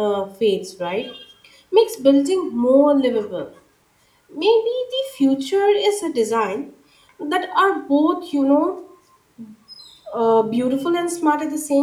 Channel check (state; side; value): identical; both; correlation 1.00